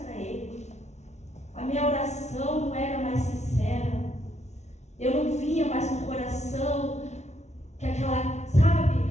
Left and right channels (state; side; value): late; right; 0.32 ms